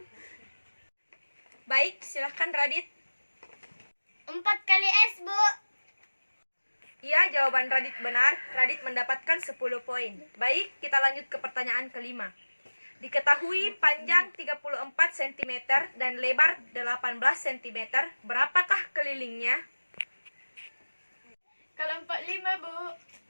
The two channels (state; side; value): inverted; both; correlation -1.00